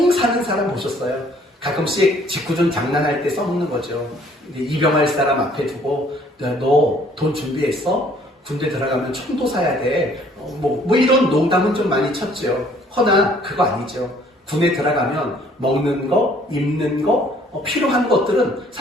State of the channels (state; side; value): normal; both; correlation 0.59